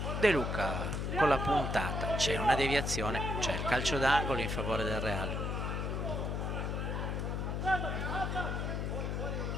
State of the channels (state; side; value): noise; left; hum, 1 dB below the sound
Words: De Luca con la puntata, c'è una deviazione, c'è il calcio d'angolo in favore del Real.